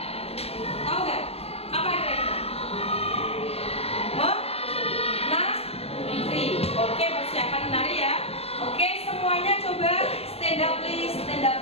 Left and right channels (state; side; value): late; right; 0.29 ms